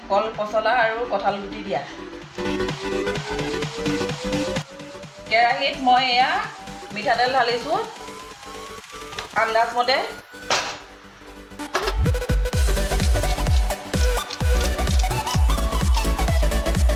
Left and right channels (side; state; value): both; identical; correlation 1.00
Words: কল পচলা আৰু কঁঠাল গুটি দিয়া। কেৰাহীত মই এয়া মিঠাতেল ঢালিছোঁ আন্দাজমতে।